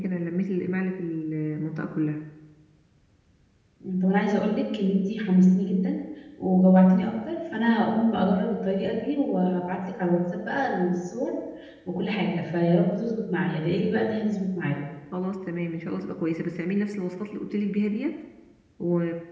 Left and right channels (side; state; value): both; identical; correlation 1.00